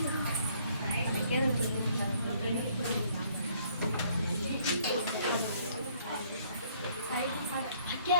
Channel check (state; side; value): inverted; both; correlation -0.63